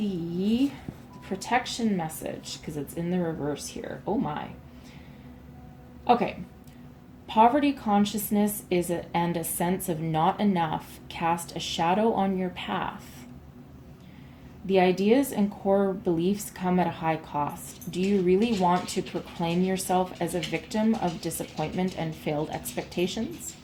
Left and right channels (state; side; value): identical; both; correlation 1.00